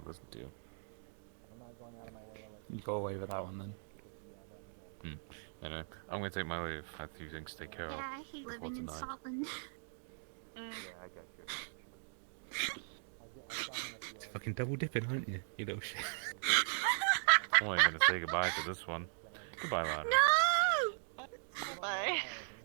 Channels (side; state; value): left; silent; digital silence